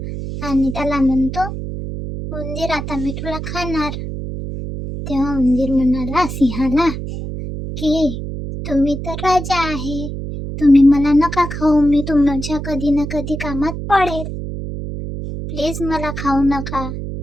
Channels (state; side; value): noise; right; hum, 6 dB below the sound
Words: आणि त्याला म्हणतो, उंदीर आता मी तुला खाणार. तेव्हा उंदीर म्हणाला सिंहाला की तुम्ही तर राजा आहे, तुम्ही मला नका खाऊ, मी तुमच्या कधी ना कधी कामात पडेल, प्लीज मला खाऊ नका.